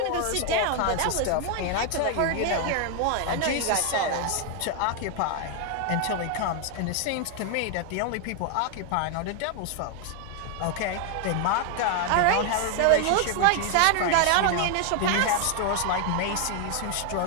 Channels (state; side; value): different; both; correlation 0.00